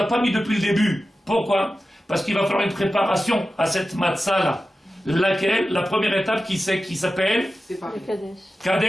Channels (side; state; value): both; normal; correlation 0.94